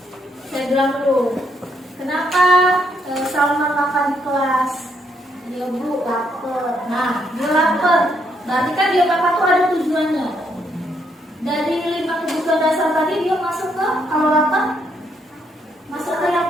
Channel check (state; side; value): normal; both; correlation 0.74